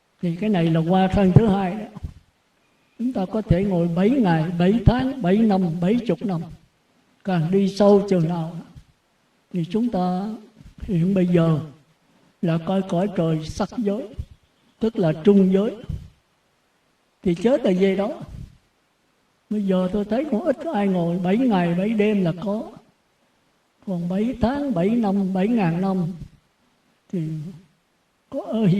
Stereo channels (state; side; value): identical; both; correlation 1.00